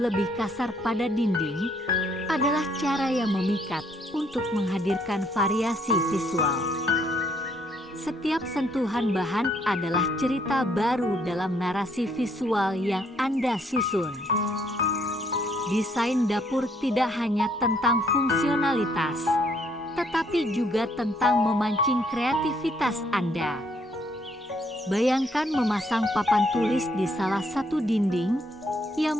kasar pada dinding adalah cara yang memikat untuk menghadirkan variasi visual. Setiap sentuhan bahan adalah cerita baru dalam narasi visual yang Anda susun. Desain dapur tidak hanya tentang fungsionalitas, tetapi juga tentang memancing kreativitas Anda. Bayangkan memasang papan tulis di salah satu dinding yang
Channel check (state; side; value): normal; both; correlation 0.68